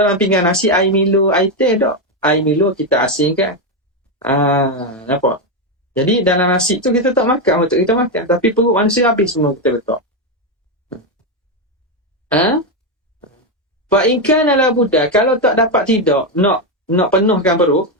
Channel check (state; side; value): normal; both; correlation 0.07